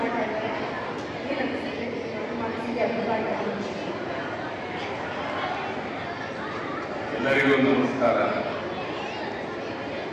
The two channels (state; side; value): identical; both; correlation 1.00